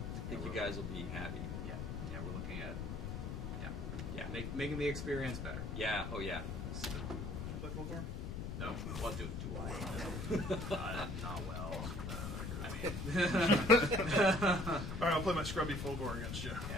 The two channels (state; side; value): noise; left; rumble, 4 dB below the sound